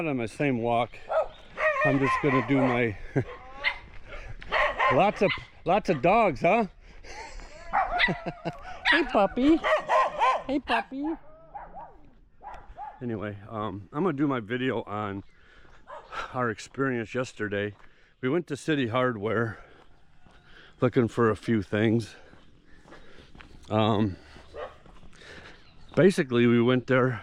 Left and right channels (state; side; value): identical; both; correlation 1.00